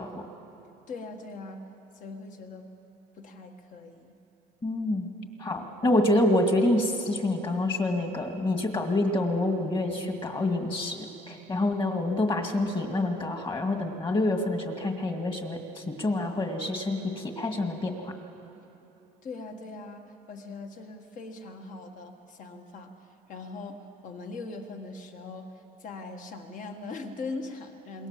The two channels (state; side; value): normal; both; correlation 0.68